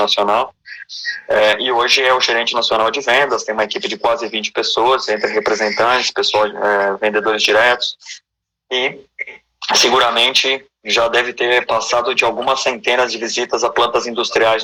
E hoje é o gerente nacional de vendas, tem uma equipe de quase 20 pessoas, entre representantes, vendedores diretos, e seguramente já deve ter passado de algumas centenas de visitas a plantas industriais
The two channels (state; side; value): identical; both; correlation 1.00